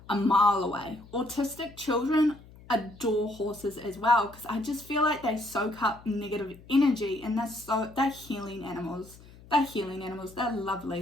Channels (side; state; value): left; noise; hum, 21 dB below the sound